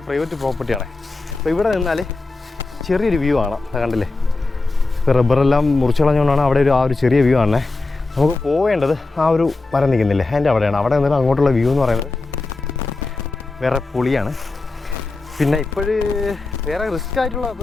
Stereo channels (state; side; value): quieter; right; 3.5 dB